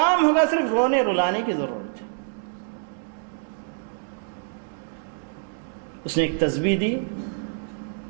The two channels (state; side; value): silent; left; 61 dB below the other